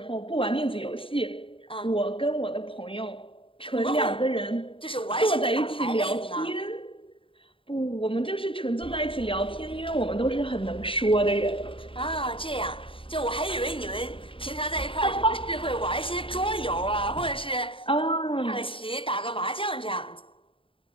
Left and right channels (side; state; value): right; late; 0.26 ms